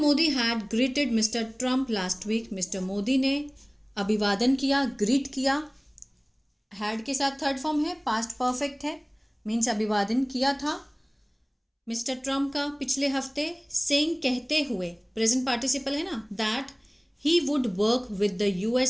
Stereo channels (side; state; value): both; identical; correlation 1.00